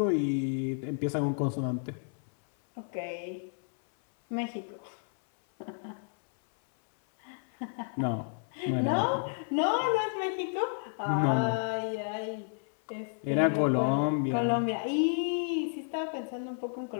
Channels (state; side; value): silent; right; 57 dB below the other